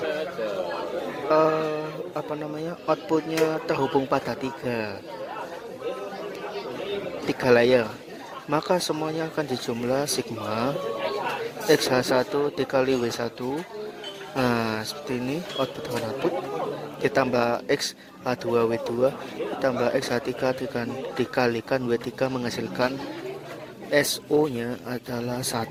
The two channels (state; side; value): identical; both; correlation 1.00